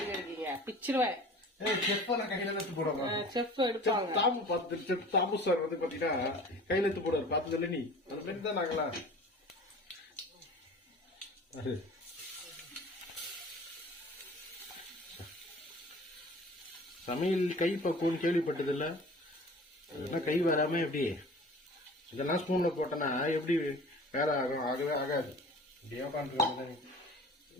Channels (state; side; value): normal; both; correlation 0.42